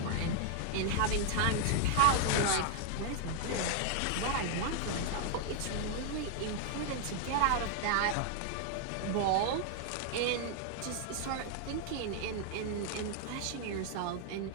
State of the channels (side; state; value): both; different; correlation 0.00